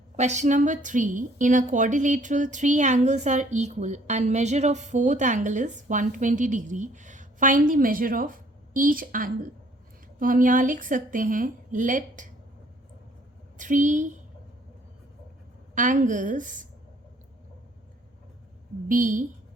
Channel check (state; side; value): normal; both; correlation 0.60